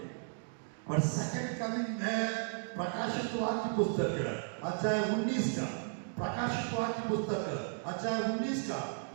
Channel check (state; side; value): silent; left; digital silence